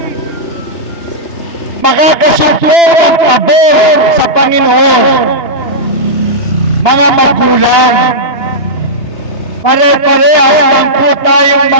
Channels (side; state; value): right; late; 2.9 ms